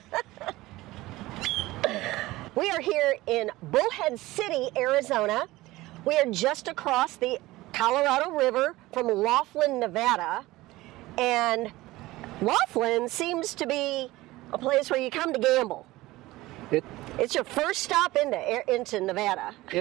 We are here in Bullhead City, Arizona. We are just across the Colorado River from Laughlin, Nevada. And Laughlin seems to be a place where you come to gamble. It's your first stop into Nevada.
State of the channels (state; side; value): quieter; left; 18.6 dB